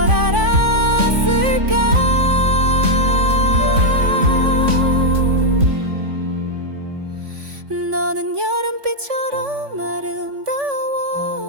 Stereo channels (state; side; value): late; left; 3.5 ms